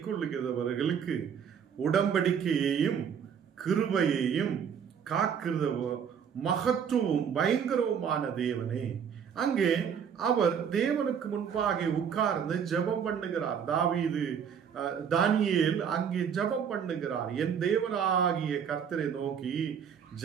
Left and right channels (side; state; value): left; quieter; 7.6 dB